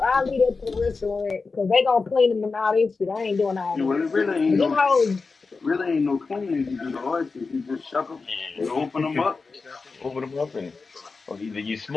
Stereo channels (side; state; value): right; quieter; 4.3 dB